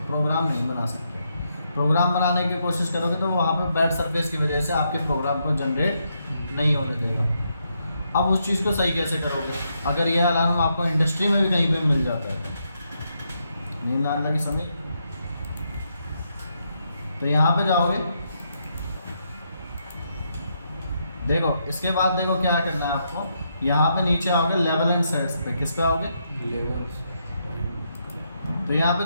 प्रोग्राम नहीं बना सकते। प्रोग्राम बनाने की कोशिश करोगे तो वहाँ पर बैड सरफेस की वजह से आपके प्रोग्राम को जनरेट नहीं होने देगा। अब उस चीज़ को सही कैसे करोगे? अगर यह अलार्म आपको इंडस्ट्री में भी कहीं पे मिल जाता है, नींद आने लगी समझ, तो यहाँ पे जाओगे, देखो इसके बाद देखो क्या करना है आपको। यहाँ पे नीचे आओगे लेवल एंड सेट्स पे, किस पे आओगे? लेवल्स। तो यहाँ पे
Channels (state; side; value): inverted; both; correlation -0.79